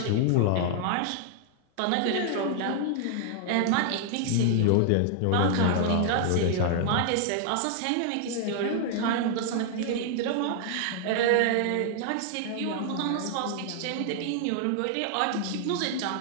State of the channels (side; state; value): both; different; correlation -0.01